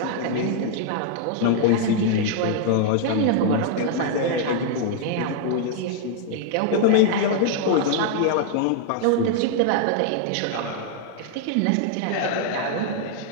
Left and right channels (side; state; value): both; different; correlation -0.01